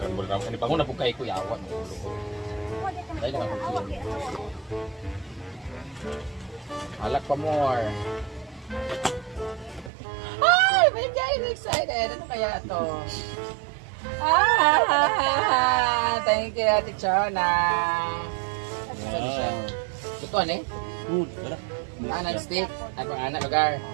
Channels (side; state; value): left; drops out; at 9.9 s